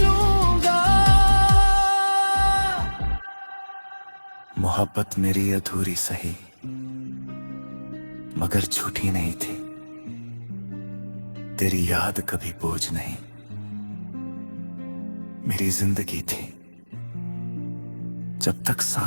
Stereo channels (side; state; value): both; inverted; correlation -1.00